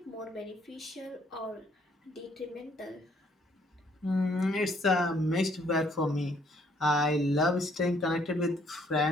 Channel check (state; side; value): normal; both; correlation 0.65